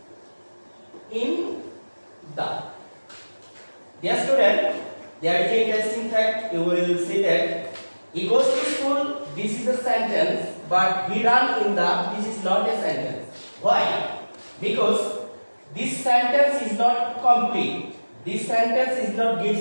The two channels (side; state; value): both; inverted; correlation -1.00